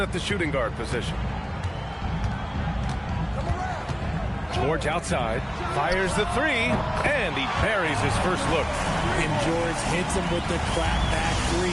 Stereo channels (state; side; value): identical; both; correlation 1.00